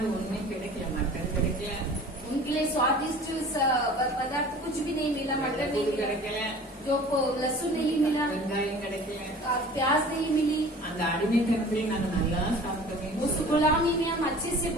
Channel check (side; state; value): both; normal; correlation 0.44